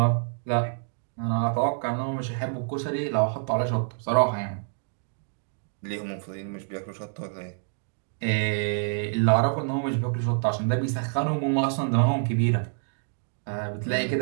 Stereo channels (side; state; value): left; silent; digital silence